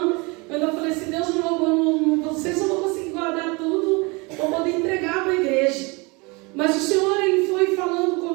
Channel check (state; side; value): quieter; left; 27.5 dB